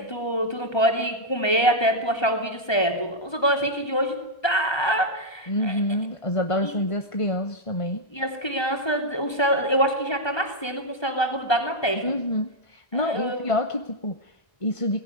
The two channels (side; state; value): right; late; 1.3 ms